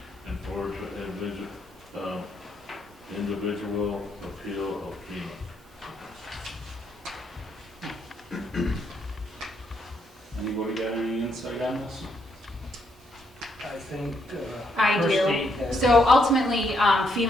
and forward to individual appeal of FEMA. Anybody got any insight on this? I think I do. Christie has. So ultimately,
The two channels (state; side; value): normal; both; correlation 0.75